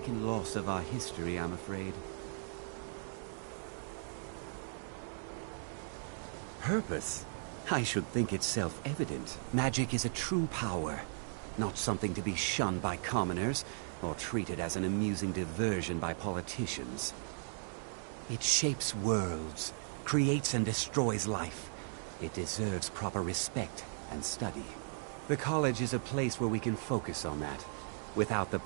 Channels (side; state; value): left; silent; digital silence